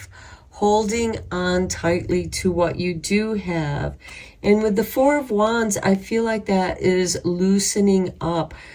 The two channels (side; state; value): both; identical; correlation 1.00